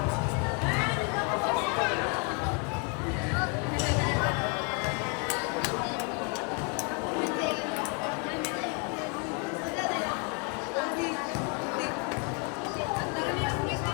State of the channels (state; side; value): quieter; right; 34.8 dB